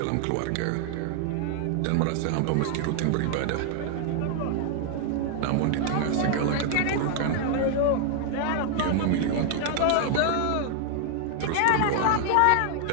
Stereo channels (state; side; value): different; both; correlation 0.00